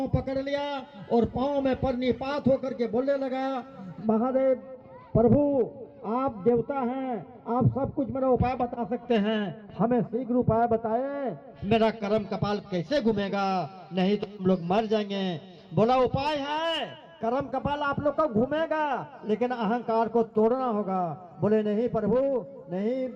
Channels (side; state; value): both; identical; correlation 1.00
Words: पकड़ लिया और पांव में परनिपात होकर के बोलने लगा, महादेव प्रभु, आप देवता हैं, आप सब कुछ मेरा उपाय बता सकते हैं, हमें शीघ्र उपाय बताए, मेरा कर्म कपाल कैसे घूमेगा, नहीं तो हम लोग मर जाएंगे। बोला, उपाय है, कर्म कपाल आप लोग का घूमेगा, लेकिन अहंकार को तोड़ना होगा। बोले, नहीं प्रभु, नहीं